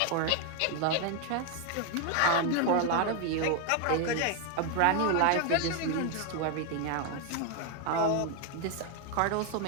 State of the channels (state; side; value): different; both; correlation 0.01